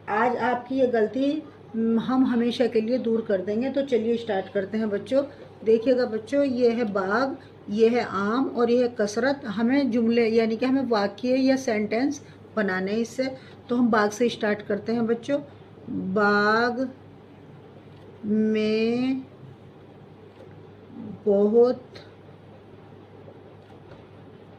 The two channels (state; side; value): identical; both; correlation 1.00